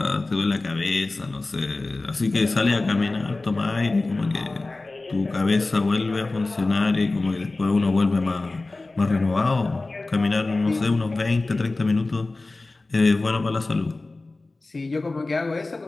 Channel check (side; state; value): right; quieter; 3.2 dB